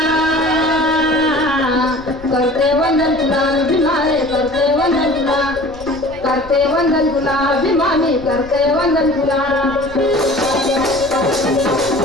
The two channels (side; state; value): left; noise; rumble, 18 dB below the sound